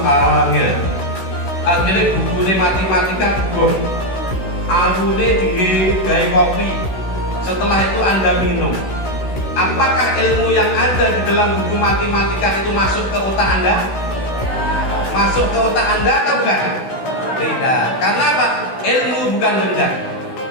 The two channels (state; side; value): late; right; 16 ms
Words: awalnya, akhirnya bukunya matematika bukuh, awalnya digawe kopi, setelah itu Anda minum. Apakah ilmu yang ada di dalam buku matematika itu masuk ke otak Anda? Masuk ke otak Anda atau bukan? Tidak. Karena apa? Ilmu bukan benda.